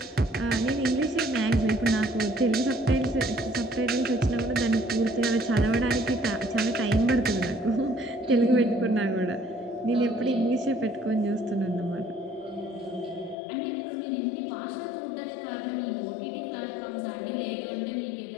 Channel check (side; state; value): right; drops out; at 13.4 s